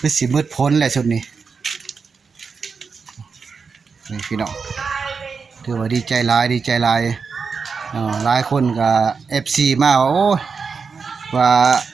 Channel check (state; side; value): quieter; left; 5.3 dB